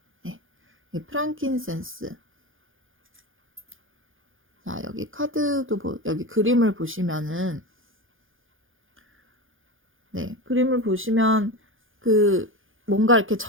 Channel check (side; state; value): left; late; 0.58 ms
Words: 네. 프랑킨센스. 자, 여기 여기 그림을 보시면은, 네, 그림을 보시면 뭔가 이렇게